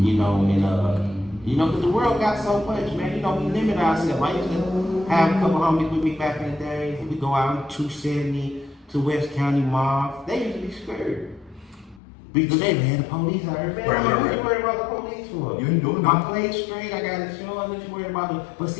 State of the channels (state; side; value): drops out; right; at 12.0 s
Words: you know, and, you know, because the world got so much, man. You know, we limit ourselves. I used to have a couple homies with me back in the day. We go out 270 to West County Mall. They used to be scared. Because they had the police out here. Man, what you worried about the police for? You ain't doing I nothing. played straight. I got insurance. What you worried about? But